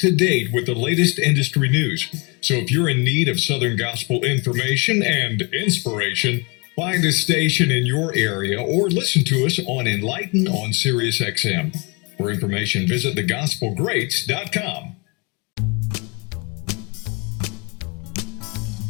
date with the latest industry news. So if you're in need of Southern gospel information and inspiration, find a station in your area or listen to us on Enlighten on Sirius XM. For information, visit thegospelgreats.com.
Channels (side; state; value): right; quieter; 30.2 dB